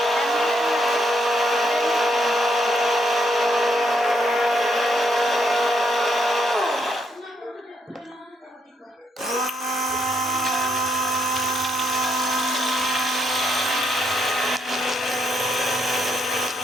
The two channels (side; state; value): both; normal; correlation 0.75